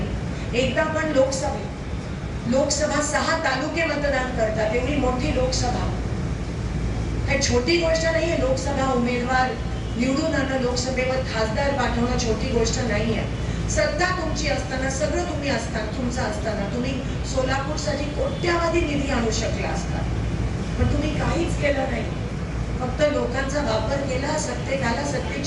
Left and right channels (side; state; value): both; identical; correlation 1.00